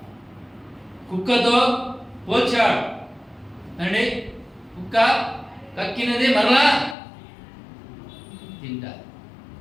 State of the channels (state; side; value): drops out; right; at 7.0 s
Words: కుక్కతో పోల్చాడు అండి. కుక్క కక్కినది మరలా తింటారు